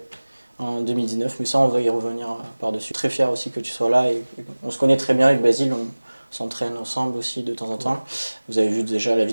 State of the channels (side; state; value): both; inverted; correlation -1.00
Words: en 2019. Mais ça, on va y revenir par-dessus. Très fier aussi que tu sois là. Et on se connaît très bien avec Basile. On s'entraîne ensemble aussi de temps en temps. Vous avez vu déjà la